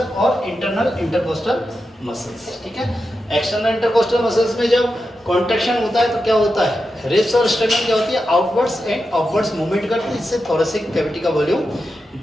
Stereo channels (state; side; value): normal; both; correlation 0.89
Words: इंटरनल इंटरकोस्टल मसल्स। ठीक है, एक्सटर्नल इंटरकोस्टल मसल्स में जब कॉन्ट्रैक्शन होता है तो क्या होता है, रिब्स और स्टर्नम क्या होती है, आउटवर्ड्स एंड अपवर्ड्स मूवमेंट करती है, इससे थोरेसिक कैविटी का वॉल्यूम